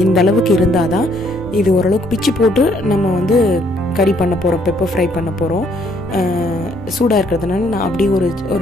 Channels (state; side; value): normal; both; correlation 0.67